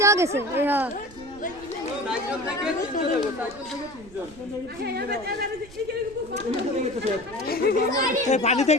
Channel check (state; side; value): noise; right; rumble, 21 dB below the sound